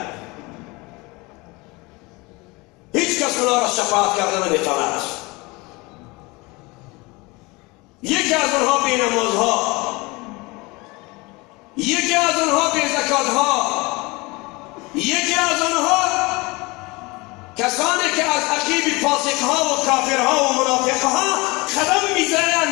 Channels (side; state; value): right; quieter; 24.6 dB